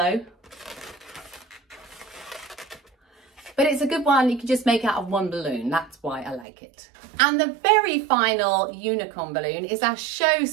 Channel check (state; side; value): drops out; left; at 6.5 s